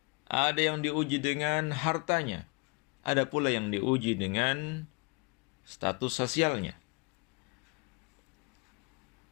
Ada yang diuji dengan hartanya. Ada pula yang diuji dengan status sosialnya.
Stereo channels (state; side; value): quieter; right; 30.8 dB